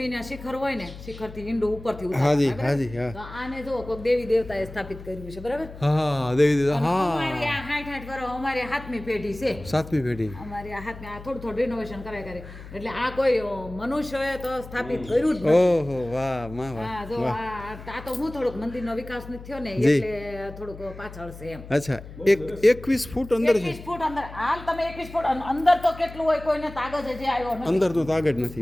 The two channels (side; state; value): left; noise; hum, 15 dB below the sound